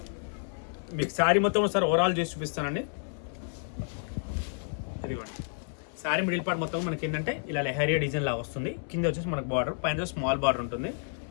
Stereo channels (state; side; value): silent; right; 58 dB below the other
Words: మీకు శారీ మొత్తం ఒకసారి ఓవరాల్ చేసి చూపిస్తానండి. ఇదిగోండి, శారీ మిడిల్ పార్ట్ మొత్తం మనకి ఏంటంటే ఇలా లెహరియా డిజైన్ లాగా వస్తుంది. కింద వచ్చేసి మనకు బార్డర్, పైన స్మాల్ బార్డర్ ఉంటుంది.